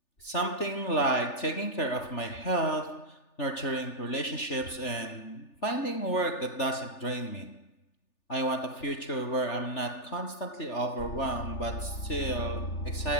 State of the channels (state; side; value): late; right; 3.4 ms